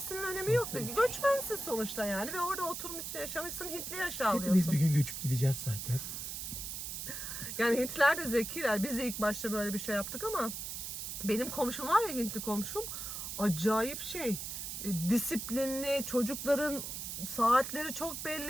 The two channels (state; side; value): noise; right; hiss, 6 dB below the sound